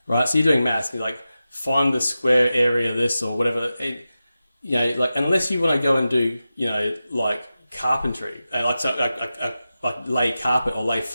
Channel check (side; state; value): both; inverted; correlation -0.93